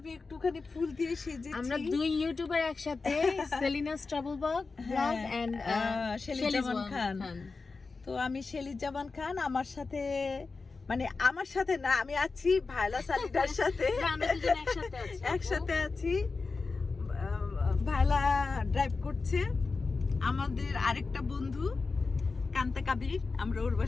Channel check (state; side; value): quieter; right; 4.2 dB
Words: একটুখানি ফুল দিয়ে সেজেছি। আমরা দুই ইউটিউবার একসাথে, Selina's travel blog and Shelley জামান খান। তো আমি শেলি জামান খান, আমার সাথে না, আমি আছি ভায়লা সালিদার সাথে। আমরা দুজন একসাথে আছি। ভায়লা ড্রাইভ করছে। আমাদের আরেকটা বন্ধু কান্তা কাবির, আমরা ওর